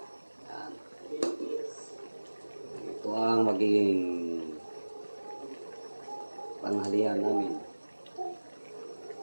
Yan. Ito ang magiging panghalian namin.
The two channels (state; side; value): inverted; both; correlation -1.00